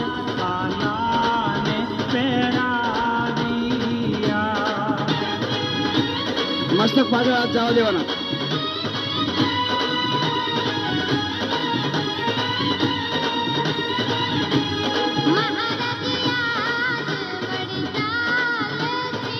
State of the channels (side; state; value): both; identical; correlation 1.00